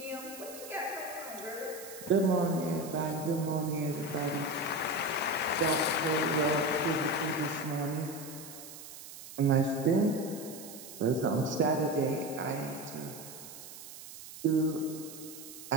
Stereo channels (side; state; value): right; noise; hiss, 14 dB below the sound